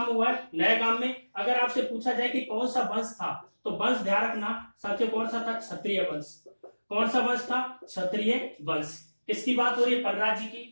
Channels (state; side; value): inverted; both; correlation -1.00